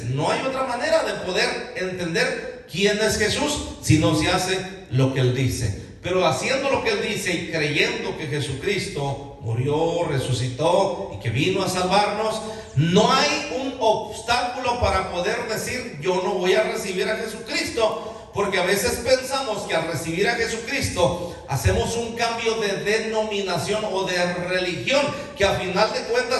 No hay otra manera de poder entender quién es Jesús si no se hace lo que Él dice. Pero haciendo lo que Él dice y creyendo que Jesucristo murió, resucitó y que vino a salvarnos, no hay un obstáculo para poder decir yo no voy a recibir a Jesucristo. Porque a veces pensamos que al recibir a Jesucristo hacemos un cambio de denominación o de religión, que a final de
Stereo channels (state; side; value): identical; both; correlation 1.00